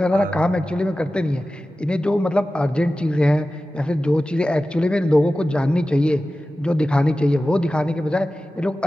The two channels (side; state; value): both; normal; correlation 0.95